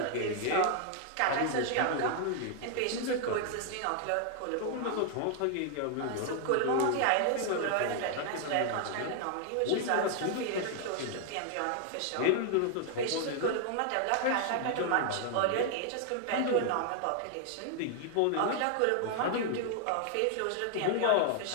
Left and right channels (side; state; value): both; different; correlation 0.00